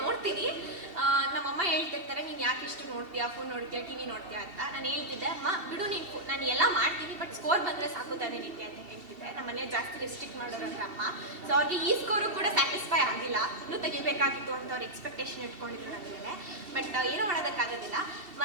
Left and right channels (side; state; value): left; late; 2.7 ms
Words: ನೋಡ್ತೀನಿ. ನಮ್ಮಮ್ಮ ಹೇಳ್ತಿರ್ತಾರೆ, ನೀನು ಯಾಕೆ ಇಷ್ಟು ನೋಡ್ತೀಯಾ, ಫೋನ್ ನೋಡ್ತೀಯಾ, ಟಿ ವಿ ನೋಡ್ತೀಯಾ ಅಂತ. ನಾನು ಹೇಳ್ತಿದ್ದೆ, ಅಮ್ಮ ಬಿಡು ನೀನು, ನಾನು ಎಲ್ಲ ಮಾಡ್ತೀನಿ, ಬಟ್ ಸ್ಕೋರ್ ಬಂದರೆ ಸಾಕು ತಾನೇ ನಿಂತೆ ಅಂತ ಹೇಳ್ತಿದ್ದೆ. ನಮ್ಮ ಮನೆ ಜಾಸ್ತಿ ರೆಸ್ಟ್ರಿಕ್ಟ್ ಮಾಡೋರಂದ್ರೆ ಅಮ್ಮ. ಸೊ ಅವ್ರಿಗೆ ಈ ಸ್ಕೋರು ಕೂಡ ಸ್ಯಾಟಿಸ್ಫೈ ಆಗಿಲ್ಲ, ಇನ್ನೂ ತೆಗಿಬೇಕಾಗಿತ್ತು ಅಂತ ಅವ್ರು ಎಕ್ಸ್ಪೆಕ್ಟೇಷನ್ ಇಟ್ಕೊಂಡಿದ್ರು ನನ್ನ ಮೇಲೆ. ಬಟ್ ಏನೂ ಮಾಡೋದಕ್ಕಾಗೋದಿಲ್ಲ.